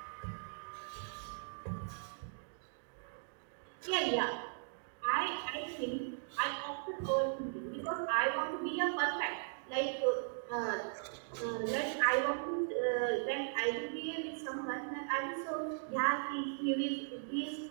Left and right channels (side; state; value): left; silent; digital silence